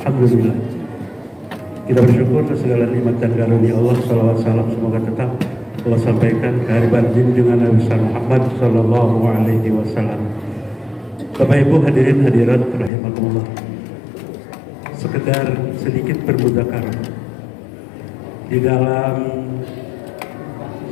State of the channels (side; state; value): right; drops out; at 12.9 s